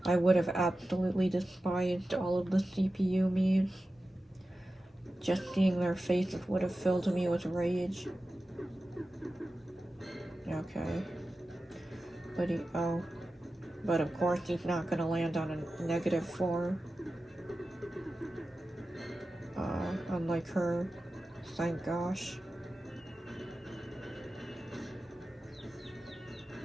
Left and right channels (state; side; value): normal; both; correlation 0.94